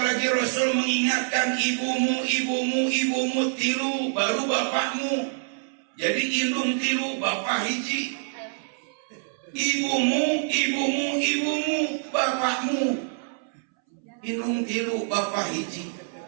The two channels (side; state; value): left; silent; 61 dB below the other